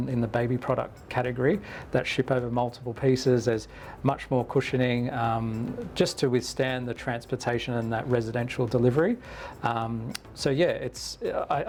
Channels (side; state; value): both; identical; correlation 1.00